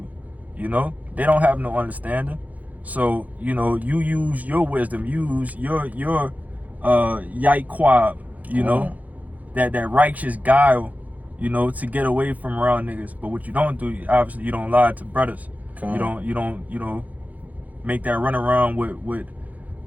You know, they don't have no understanding. So, you know, you use your wisdom, use your yaikwab, you know, that righteous guile, you know, to get away from around niggas. But what you don't do, obviously, you don't lie to brothers. You don't, you know, make that run around with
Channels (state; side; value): late; left; 0.077 ms